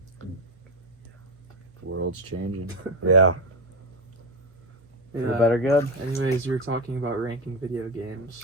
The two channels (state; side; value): normal; both; correlation 0.13